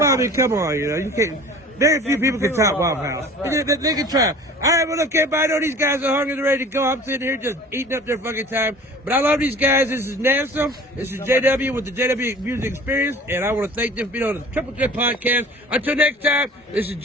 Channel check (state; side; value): normal; both; correlation 0.44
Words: I mean, come on, you know, you can't. Very few people can top Waffle House. Right. They can try. All right, well, look, everybody, I know these guys are hungry and ready to go. I'm sitting here just eating up their fucking time. But I love these guys. This is NEZNUM. This is JW with the JW Music Experience. And I want to thank them for being on the Triple Threat podcast. Until next time, this is